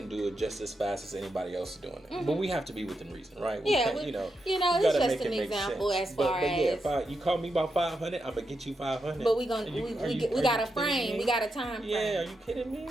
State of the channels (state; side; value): normal; both; correlation 0.85